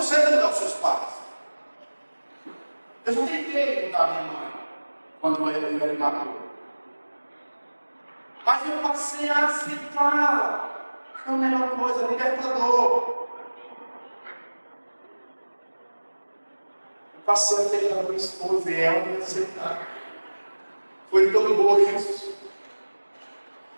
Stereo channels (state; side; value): inverted; both; correlation -1.00